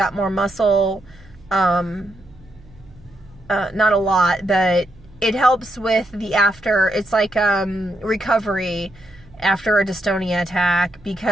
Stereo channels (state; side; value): noise; right; hum, 24 dB below the sound